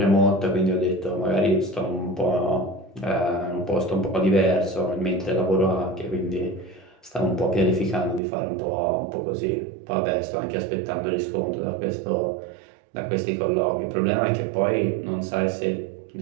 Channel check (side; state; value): left; drops out; at 8.2 s